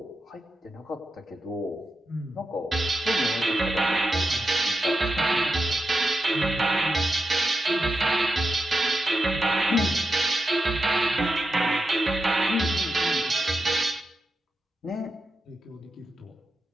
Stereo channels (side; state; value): both; normal; correlation 0.88